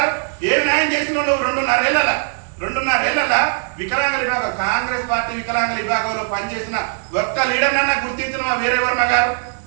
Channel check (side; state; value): left; silent; digital silence